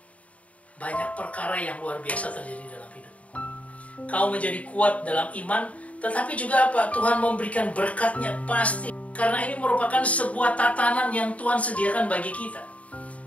banyak perkara yang luar biasa terjadi dalam hidupmu. Kau menjadi kuat dalam iman, tetapi juga apa? Tuhan memberikan berkatnya pasti. Karena ini merupakan sebuah tatanan yang Tuhan sediakan bagi kita.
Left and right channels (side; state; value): right; late; 0.067 ms